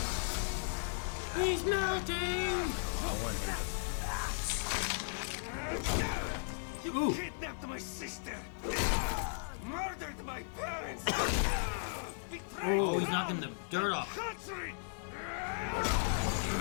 He's melting! You kidnapped my sister. Murdered my parents. Betrayed Oh, he's knocking the dirt off. country.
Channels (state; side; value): silent; right; digital silence